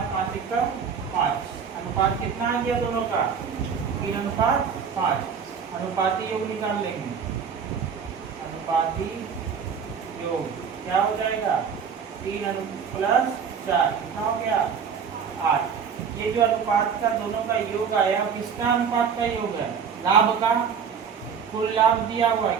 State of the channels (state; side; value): quieter; left; 6.8 dB